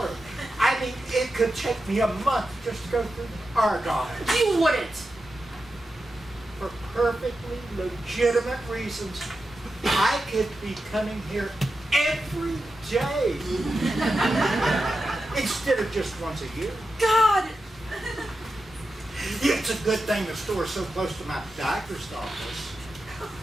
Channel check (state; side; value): normal; both; correlation 0.90